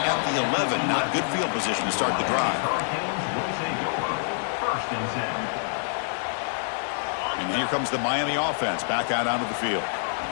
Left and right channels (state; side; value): silent; right; digital silence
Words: at the 11. Not good field position to start the drive. And here comes the Miami offense back out onto the field.